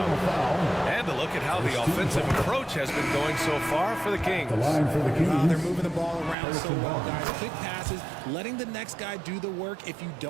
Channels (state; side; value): drops out; left; at 6.4 s